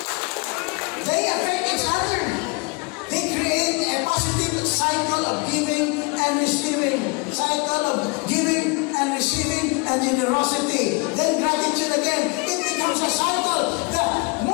They affect each other. They create a positive cycle of giving and receiving. Cycle of giving and receiving and generosity. Then gratitude again. It becomes a cycle. The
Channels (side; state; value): right; quieter; 30.0 dB